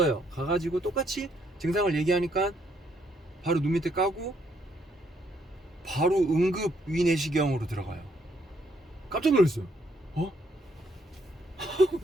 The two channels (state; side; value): normal; both; correlation 0.71